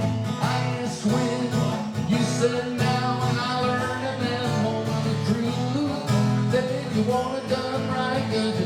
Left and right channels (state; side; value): identical; both; correlation 1.00